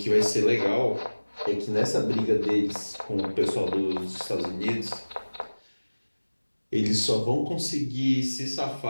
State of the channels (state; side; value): inverted; both; correlation -1.00